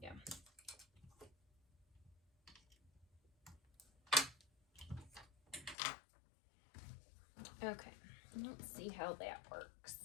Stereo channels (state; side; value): drops out; right; at 5.8 s